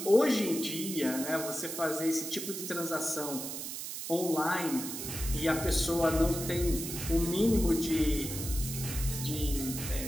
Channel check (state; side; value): noise; right; hiss, 6 dB below the sound